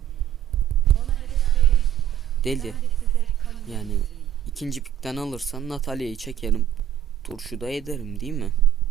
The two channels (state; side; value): quieter; left; 10.5 dB